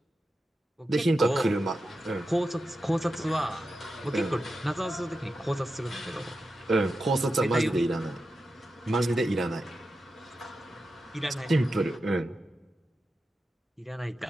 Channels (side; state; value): both; normal; correlation 0.90